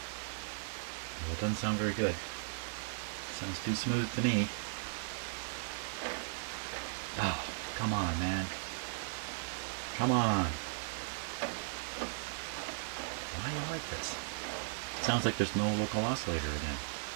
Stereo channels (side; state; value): left; silent; 53 dB below the other